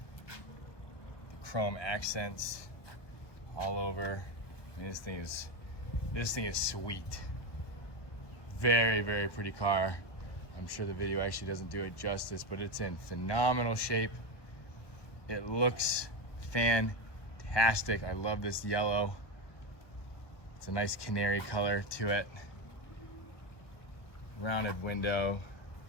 chrome accents all over. I mean, this thing is sweet. Very, very pretty car. I'm sure the video actually doesn't do it justice, but it's in phenomenal shape. It looks fantastic. I love this yellow. It's a nice canary color to it. Rounded window.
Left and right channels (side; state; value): right; late; 1.2 ms